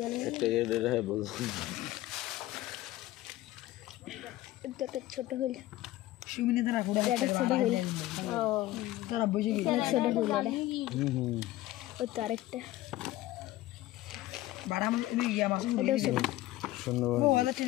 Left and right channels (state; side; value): quieter; right; 16.1 dB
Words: এটা এটা है बोल এটা তো ছোট হইল সুমিনি ধরা পুরো এটা ছোট হইল ও ধরা বুঝে গেল ছোট হইল ওই তো আরেকটা বড় মাছ এই ইয়া মাছ এটা ছোট শুনো ও ওটা